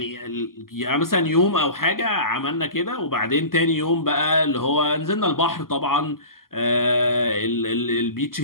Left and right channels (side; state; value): right; late; 0.92 ms